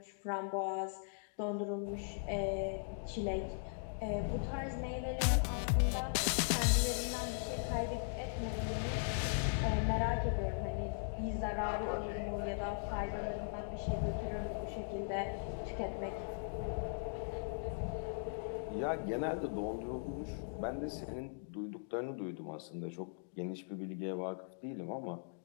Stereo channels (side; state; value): right; silent; digital silence